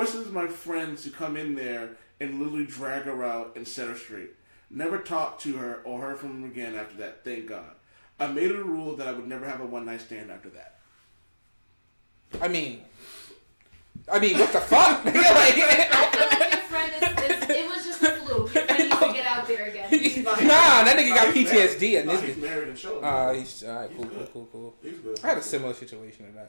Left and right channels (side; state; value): both; inverted; correlation -1.00